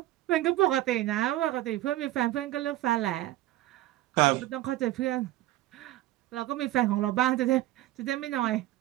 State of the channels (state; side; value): quieter; left; 15.6 dB